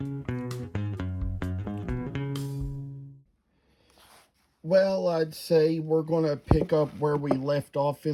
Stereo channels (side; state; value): both; identical; correlation 1.00